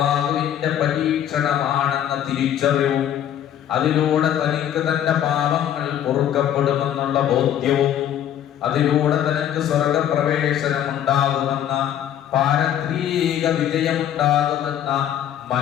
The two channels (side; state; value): right; quieter; 10.6 dB